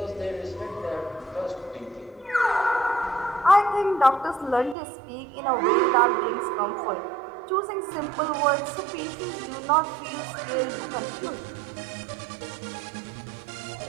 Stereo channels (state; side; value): drops out; left; at 4.8 s